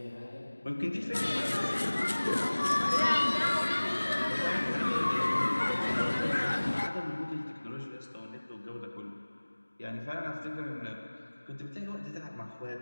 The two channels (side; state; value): both; inverted; correlation -1.00